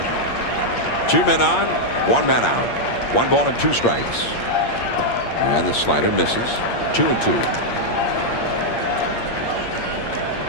2 men on, 1 man out. 1 ball and 2 strikes. And the slider misses. 2-2.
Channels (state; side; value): late; right; 8.6 ms